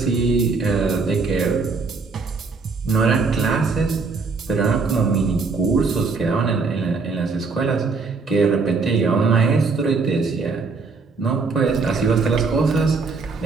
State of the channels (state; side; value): quieter; left; 4.4 dB